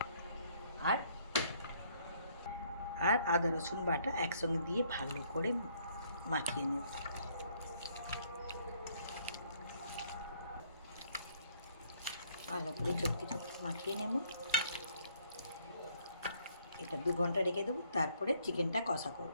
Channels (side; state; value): both; inverted; correlation -0.65